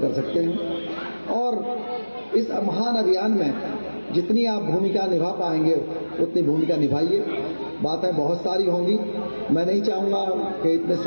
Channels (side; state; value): both; inverted; correlation -1.00